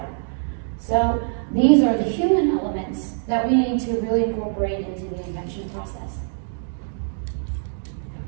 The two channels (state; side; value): silent; left; digital silence